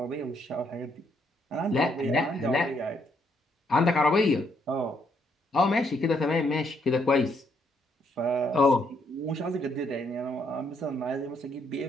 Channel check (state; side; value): normal; both; correlation 0.73